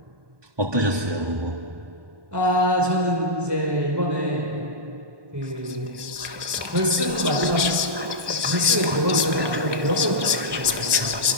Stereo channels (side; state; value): left; late; 1.2 ms